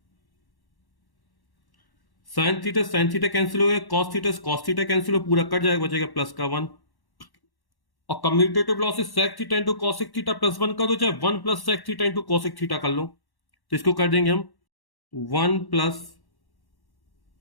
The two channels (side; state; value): right; late; 1.1 ms